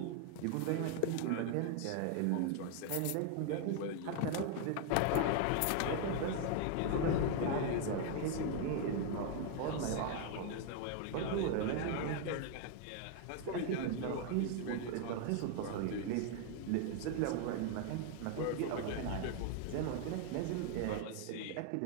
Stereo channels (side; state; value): both; different; correlation 0.00